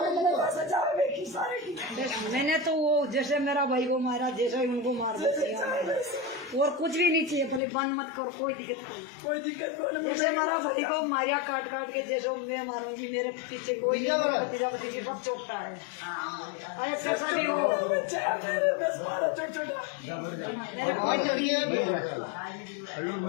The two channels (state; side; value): drops out; right; at 7.6 s